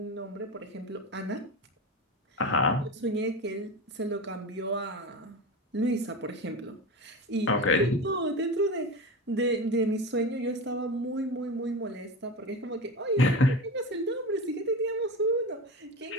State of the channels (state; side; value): normal; both; correlation 0.25